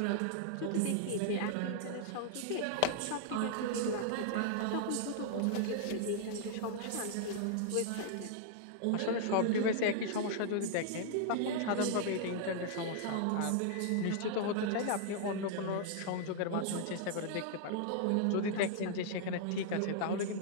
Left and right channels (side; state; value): both; different; correlation -0.01